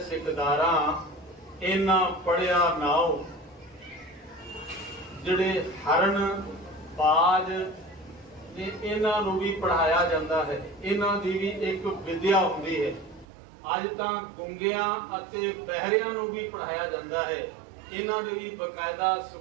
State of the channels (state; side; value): drops out; left; at 13.2 s